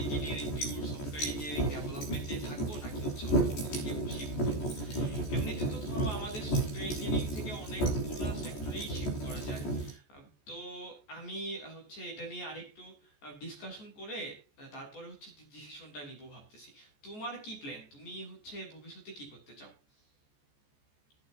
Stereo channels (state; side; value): late; right; 14 ms